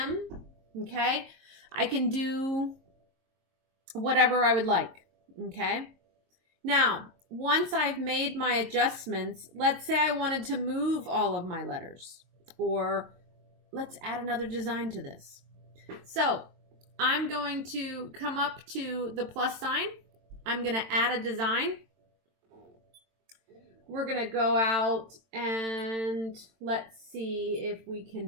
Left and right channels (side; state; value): left; late; 22 ms